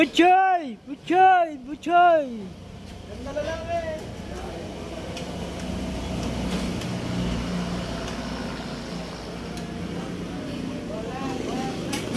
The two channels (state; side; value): identical; both; correlation 1.00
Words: Butchoy! Butchoy! Ganda na lang eh.